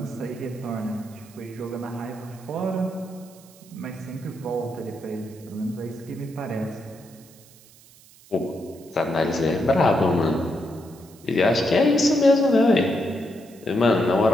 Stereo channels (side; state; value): right; noise; hiss, 24 dB below the sound